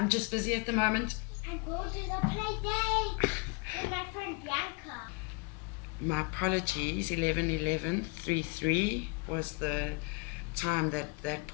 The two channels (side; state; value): right; quieter; 29.0 dB